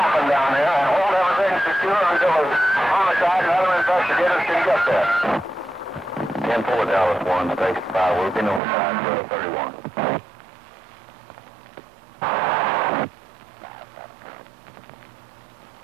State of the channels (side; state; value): left; drops out; at 8.6 s